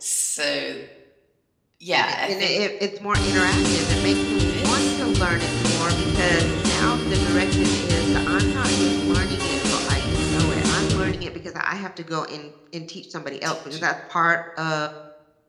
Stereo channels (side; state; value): both; identical; correlation 1.00